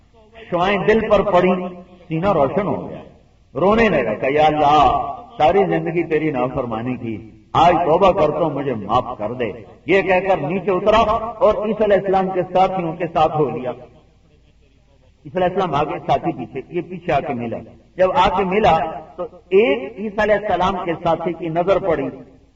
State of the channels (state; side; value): identical; both; correlation 1.00